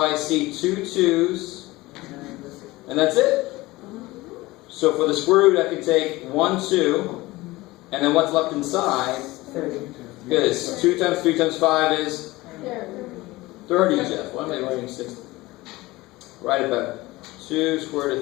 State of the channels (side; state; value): right; quieter; 19.9 dB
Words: see 2 2's. And that's it. So for the square root, I could take 1 2. And then what's left inside 30. Good. 2 times 3 times 5 is 30, Jeff. Why am I writing 60? Write it better. 2 square